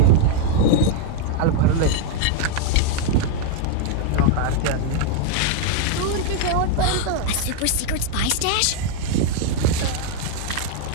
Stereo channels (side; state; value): both; different; correlation 0.00